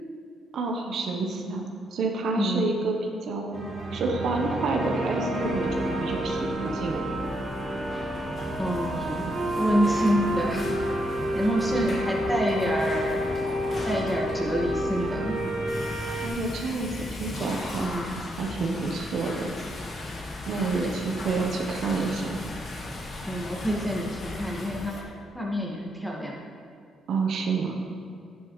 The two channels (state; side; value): normal; both; correlation 0.77